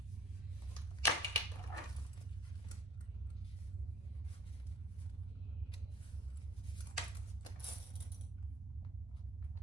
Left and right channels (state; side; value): normal; both; correlation 0.52